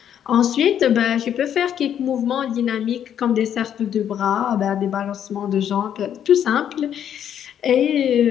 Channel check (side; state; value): right; quieter; 9.5 dB